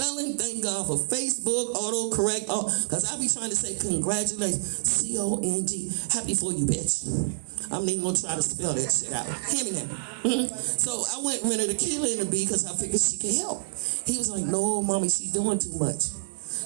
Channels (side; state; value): left; silent; digital silence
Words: thank God for Facebook, autocorrect, because I be trying to say congratulations, C-O-N-G, happy for you, bitch. I'm even gonna try to spell that shit out. Hear me now. So I went rented a killer in the bee because I figured she could help. He was like, no, mommy, she's doing too much.